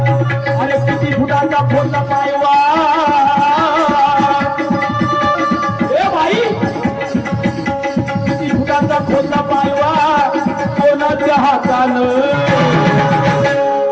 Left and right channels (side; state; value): both; identical; correlation 1.00